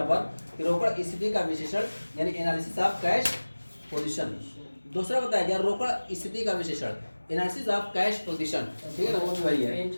पर कि रोकड़ स्थिति का विश्लेषण यानी एनालिसिस ऑफ कैश पोजीशन। दूसरा बताया गया रोकड़ स्थिति का विश्लेषण एनालिसिस ऑफ कैश पोजीशन, ठीक है ना, वो भी वही है। पेन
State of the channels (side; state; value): both; inverted; correlation -1.00